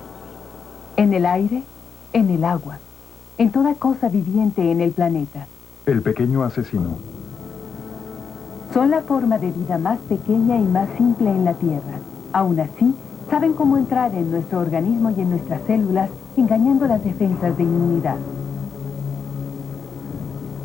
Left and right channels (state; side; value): quieter; right; 6.2 dB